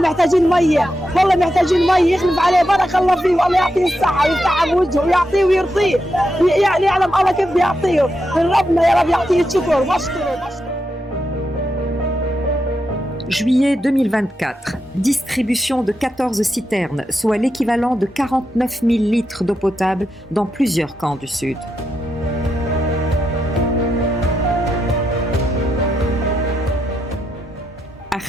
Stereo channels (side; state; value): both; normal; correlation 0.85